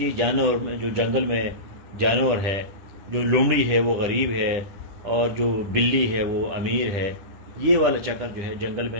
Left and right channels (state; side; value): late; left; 10 ms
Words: जानवर में, जो जंगल में जानवर है, जो लोमड़ी है वो गरीब है और जो बिल्ली है वो अमीर है। ये वाला चक्कर जो है जंगल